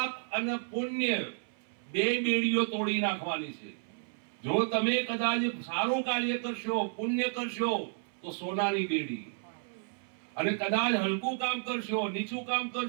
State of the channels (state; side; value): silent; left; 57 dB below the other